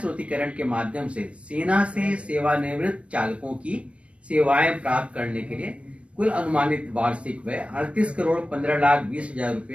के माध्यम से सेना से सेवानिवृत्त चालकों की सेवाएं प्राप्त करने के लिए कुल अनुमानित वार्षिक व्यय 38,15,20,000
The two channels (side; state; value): left; late; 0.061 ms